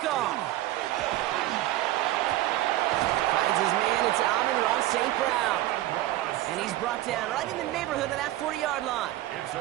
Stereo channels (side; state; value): left; quieter; 15.5 dB